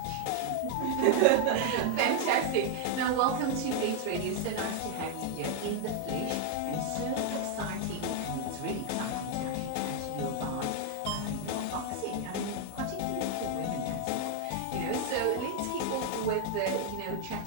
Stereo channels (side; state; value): both; different; correlation 0.00